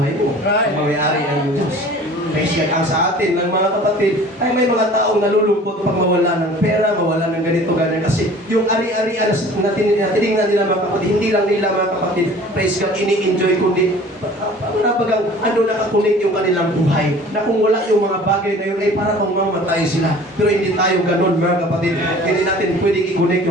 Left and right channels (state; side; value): normal; both; correlation 0.46